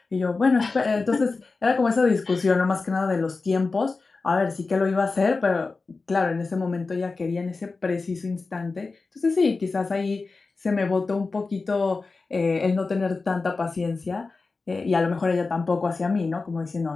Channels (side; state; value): right; quieter; 4.0 dB